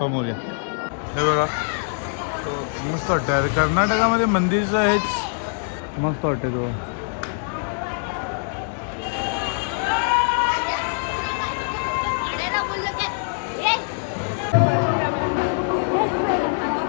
मोरया. हे बघा मस्त वाटतं. कर्नाटकामध्ये मंदिरचं हेच मस्त वाटतं. तो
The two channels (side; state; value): right; silent; 63 dB below the other